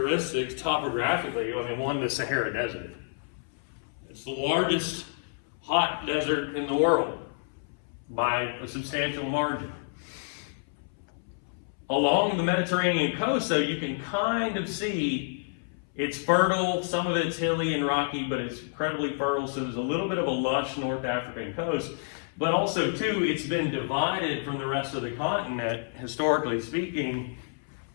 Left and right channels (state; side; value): silent; right; 59 dB below the other